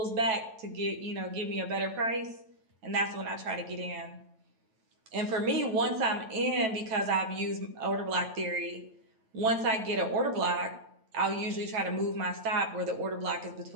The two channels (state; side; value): late; left; 9.1 ms